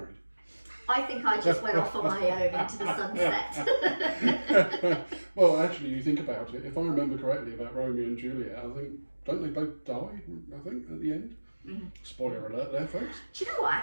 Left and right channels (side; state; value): both; inverted; correlation -1.00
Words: I think I just went off on my own into the sunset. Well, actually, you think about it. If I remember correctly about Romeo and Juliet, I think, don't they both die, I think, at the end? Mm-hmm. Spoiler alert there, folks. Do you know